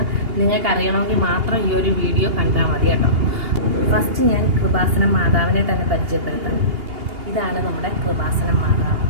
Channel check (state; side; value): late; left; 2.8 ms